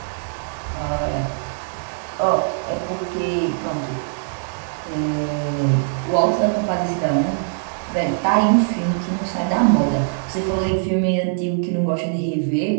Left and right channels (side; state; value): left; silent; 64 dB below the other